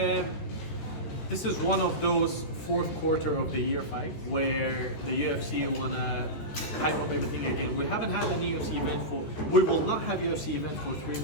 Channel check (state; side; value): late; right; 14 ms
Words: This is one of those fourth quarter of the year fight where the UFC wanna hype up everything again. We haven't had any UFC event we will not have UFC event for 3